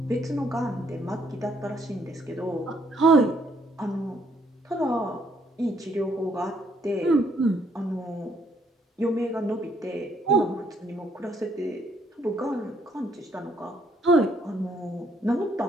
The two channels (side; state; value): both; normal; correlation 0.69